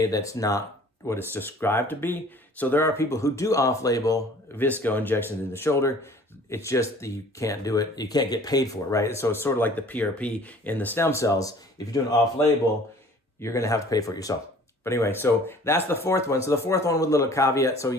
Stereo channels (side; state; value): both; normal; correlation 0.50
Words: that's not what it's described to be. So there are people who do off-label VSCO injections in the shoulder. It's just that you can't do it. You can't get paid for it, right? So it's sort of like the PRP in the stem cells. If you're doing off-label, you're going to have to pay for it yourself. But anyway, so that's the 4th one. So the 4th one with a little caveat. So